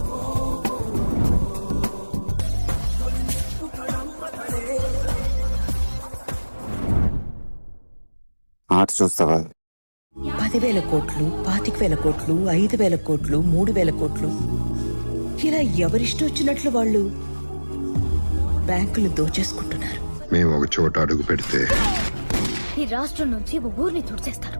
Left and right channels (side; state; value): both; inverted; correlation -1.00